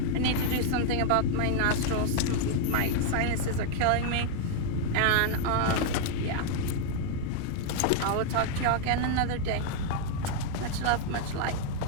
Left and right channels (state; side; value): different; both; correlation 0.00